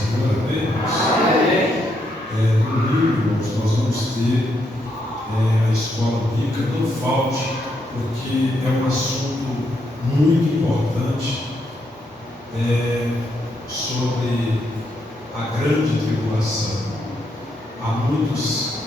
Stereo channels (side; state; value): both; normal; correlation 0.78